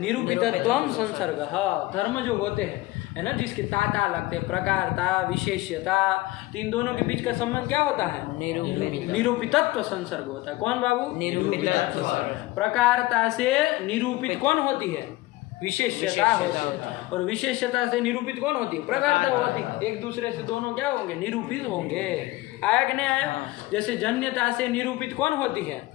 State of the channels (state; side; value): quieter; right; 19.2 dB